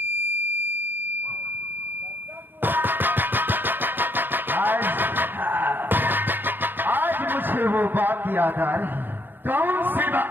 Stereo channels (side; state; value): left; late; 0.095 ms